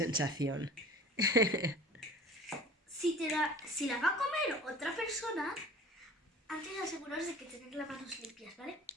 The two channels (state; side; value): normal; both; correlation 0.44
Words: Si la va a comer otra persona, antes de aseguraros de que tenéis las manos limpias, ¿vale?